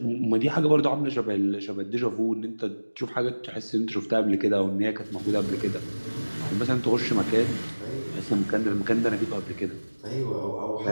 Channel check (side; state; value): both; inverted; correlation -1.00